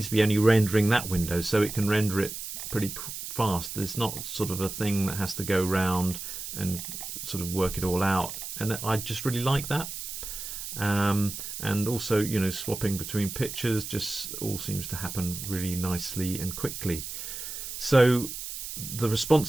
to be only rendering that window, so it can render it pretty fast. There's not sort of a thing that has to go round and sort of work it all out, and I just really like that. And also, you know, swapping between pictures just all seems to happen really nicely and quickly. So the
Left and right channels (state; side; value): noise; right; hiss, 7 dB below the sound